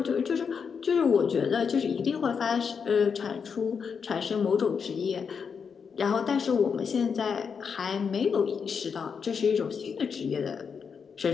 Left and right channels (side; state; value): right; quieter; 6.2 dB